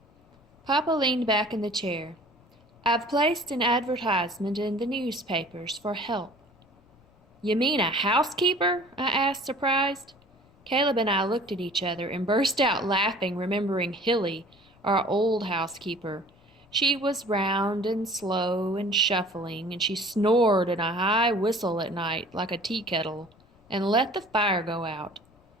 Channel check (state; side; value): noise; left; rumble, 30 dB below the sound